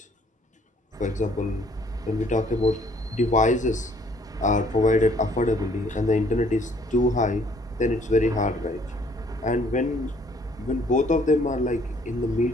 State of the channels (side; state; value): both; normal; correlation 0.61